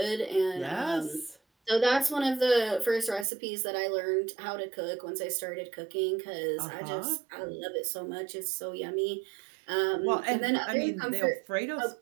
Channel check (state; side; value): drops out; left; at 3.2 s